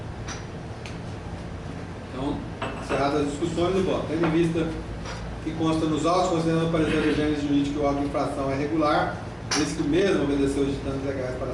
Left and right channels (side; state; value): both; identical; correlation 1.00